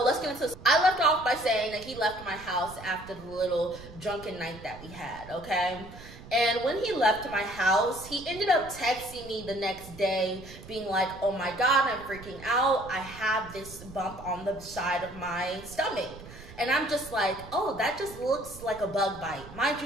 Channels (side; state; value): right; noise; rumble, 16 dB below the sound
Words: let's get into this. I left off by saying that he left my house after the little drunken night that we had, okay? And when he left my house, he ended up texting me the next day being like, oh my God, I'm freaking out. I have this bump on the side of my stomach. And I'm just like, oh, that just looks like a bug bite. Mind